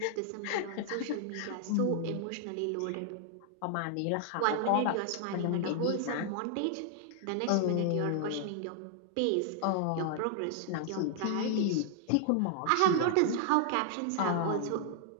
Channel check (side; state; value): both; different; correlation 0.00